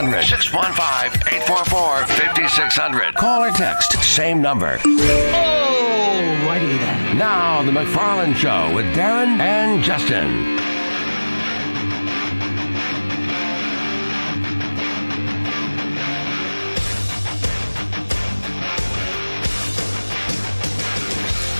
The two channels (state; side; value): inverted; both; correlation -1.00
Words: 615-844-5600. Call or text. Same number. Alrighty then. Now, the McFarland Show with Darren and Justin.